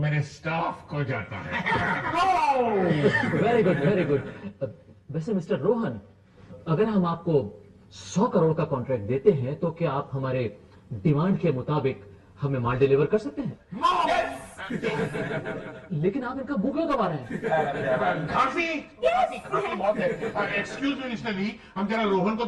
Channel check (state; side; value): identical; both; correlation 1.00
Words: स्टाफ को जाता है। Very good. वैसे मिस्टर रोहन, अगर हम आपको 100 करोड़ का कॉन्ट्रैक्ट देते हैं तो क्या आप हमारे डिमांड के मुताबिक हमें माल डिलीवर कर सकते हैं? लेकिन आप इनका मुंह क्यों दबा रहे हैं? खांसी बहुत है। एक्सक्यूज मी मिस्टर ली, हम जरा रोहन को